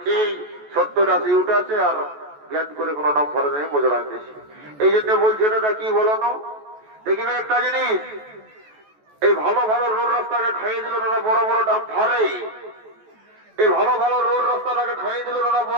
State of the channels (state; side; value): late; left; 14 ms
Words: 70-80 উঠাচ্ছে আর গ্যাস করে কোনো নাম ফরে নেই, মজা দিচ্ছে। এই জন্য বলছে দাদা কি বলো না, দেখবে একটা জিনিস, এই ভালো ভালো রোড রাস্তাকে খাইয়ে দিল দাদা বড় বড় দাম ফারে, এই ভালো ভালো রোড রাস্তাটাকে খাইয়ে দিল দাদা